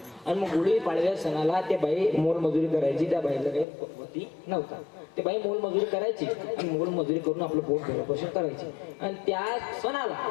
आणि मग गुढी पाडव्या सणाला ते बाई मोलमजुरी करायची. त्या बाईला काही होती नव्हता. ते बाई मोलमजुरी करायची आणि मोलमजुरी करून आपलं पोट भरण्यापासून करायची. आणि त्या सणाला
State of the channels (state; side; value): drops out; right; at 3.7 s